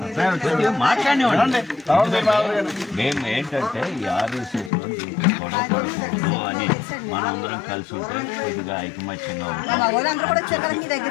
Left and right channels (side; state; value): right; drops out; at 4.7 s